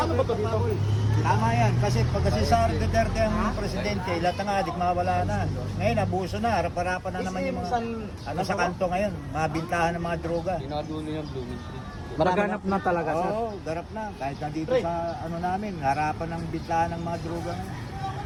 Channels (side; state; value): both; identical; correlation 1.00